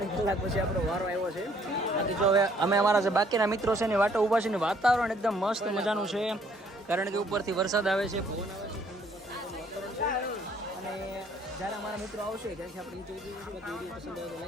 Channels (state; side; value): normal; both; correlation 0.63